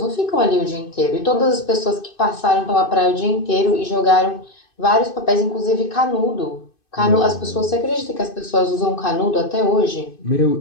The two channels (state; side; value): late; right; 2.5 ms